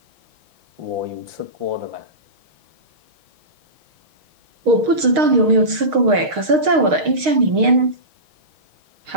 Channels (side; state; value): left; late; 6.4 ms